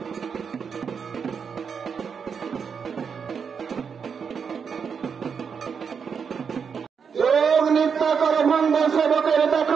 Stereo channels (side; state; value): left; quieter; 6.4 dB